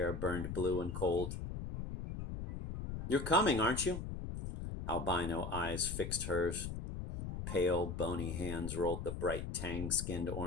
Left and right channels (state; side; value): noise; left; rumble, 6 dB below the sound